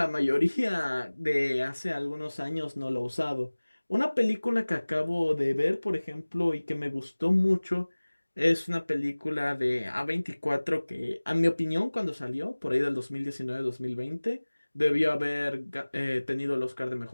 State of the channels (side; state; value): both; inverted; correlation -1.00